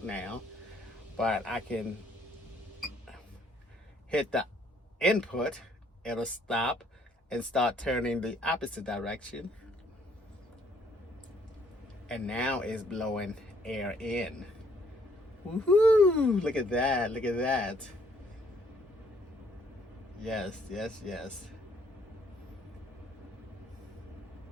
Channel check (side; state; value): both; normal; correlation 0.65